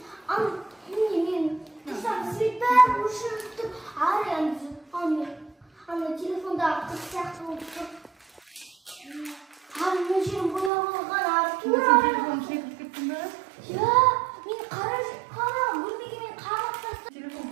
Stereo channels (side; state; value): left; drops out; at 10.7 s